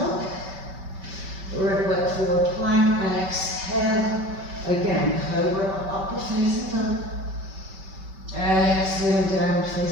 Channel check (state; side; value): late; left; 5.2 ms